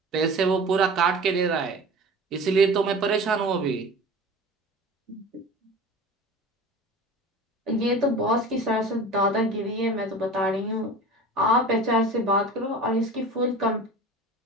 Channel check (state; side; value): normal; both; correlation 0.36